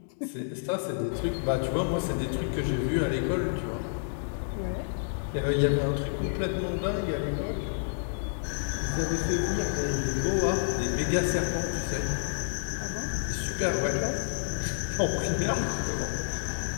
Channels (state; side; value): silent; right; digital silence